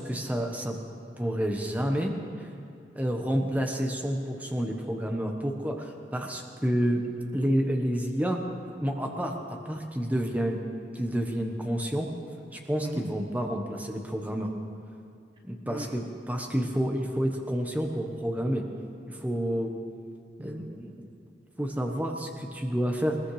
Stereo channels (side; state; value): both; normal; correlation 0.89